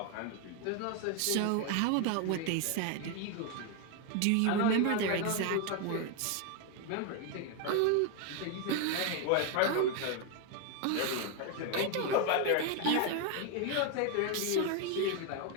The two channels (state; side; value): different; both; correlation 0.01